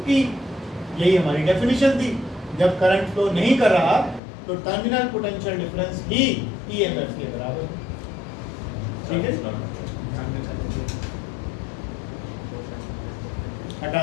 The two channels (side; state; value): right; drops out; at 4.2 s